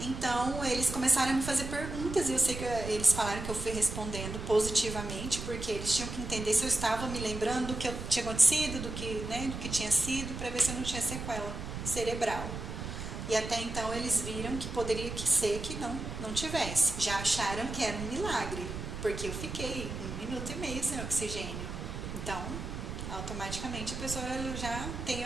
eles começaram a me fazer perguntas e eu sei que eles falaram que eu fui respondendo positivamente, porque eles tinham que entender se eu estava me lembrando do que tinha acontecido, do que tinha sido, para ver se eu não tinha sequela cerebral. E até então eles viram que poderia ser que não tivesse. Já acharam que era um milagre, porque eu fiquei 1 minuto e meio sem oxigênio. Então, automaticamente a pessoa já tem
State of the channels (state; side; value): noise; right; rumble, 7 dB below the sound